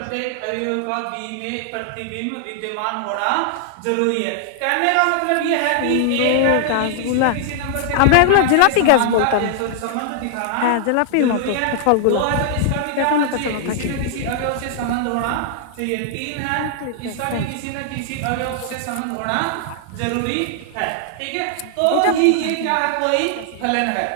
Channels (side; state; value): both; different; correlation -0.01